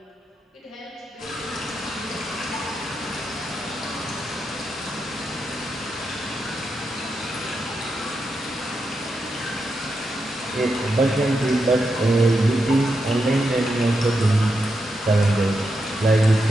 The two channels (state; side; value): normal; both; correlation 0.85